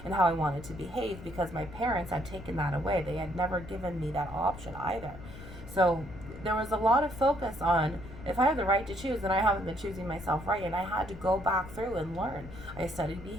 and how I wanted to behave, because my parents had taken that away. They had never given me that option either. So there was a lot of focus on, if I have the right to choose, then I haven't been choosing myself right. And I had to go back through and learn. I studied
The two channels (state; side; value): noise; left; rumble, 14 dB below the sound